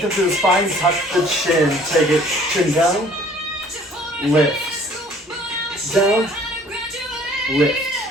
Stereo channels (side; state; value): both; normal; correlation 0.55